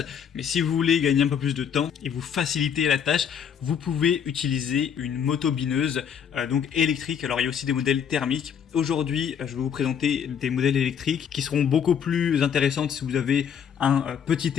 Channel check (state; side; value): quieter; right; 7.9 dB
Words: Mais si vous voulez gagner un peu plus de temps et vous faciliter la tâche, vous pouvez utiliser une motobineuse donc électrique. Alors il y a aussi des modèles thermiques. Aujourd'hui, je vais vous présenter des modèles électriques qui seront beaucoup plus intéressantes si vous avez un petit